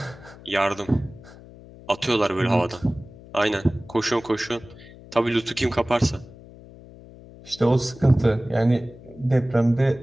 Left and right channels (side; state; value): left; noise; hum, 20 dB below the sound